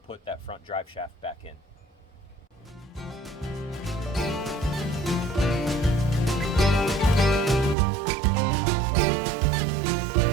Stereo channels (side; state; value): left; drops out; at 7.8 s